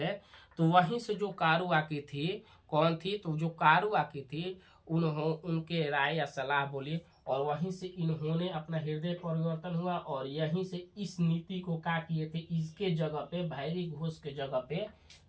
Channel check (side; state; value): both; identical; correlation 1.00